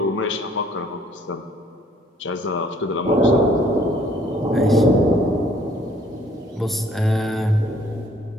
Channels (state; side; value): normal; both; correlation 0.61